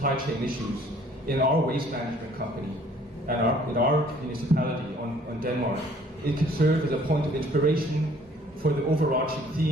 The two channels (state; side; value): normal; both; correlation 0.58